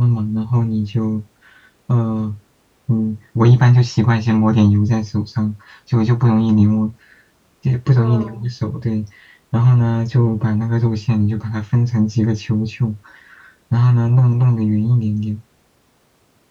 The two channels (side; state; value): both; identical; correlation 1.00